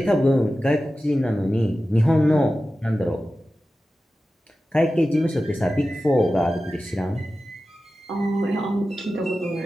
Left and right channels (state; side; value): normal; both; correlation 0.94